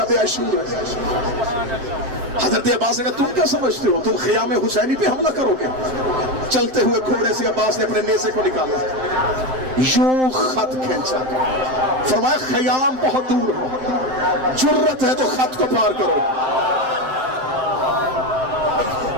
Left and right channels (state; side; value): late; left; 7.7 ms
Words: عاشور ہے۔ حضرت عباس نے کہا تم کیا سمجھتے ہو، تم خیام حسینی پہ حملہ کرو گے؟ چلتے ہوئے گھوڑے سے عباس نے اپنے نیزے کو نکالا، یوں خط کھینچا، فرمایا خیام بہت دور ہے، جرت ہے تو خط کو پار کرو۔